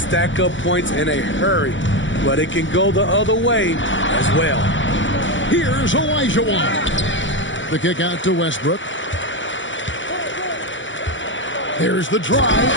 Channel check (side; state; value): right; late; 0.55 ms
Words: up points in a hurry, but it can go the other way as well. Here's Olajuwon. The kick out to Westbrook. There's the drive,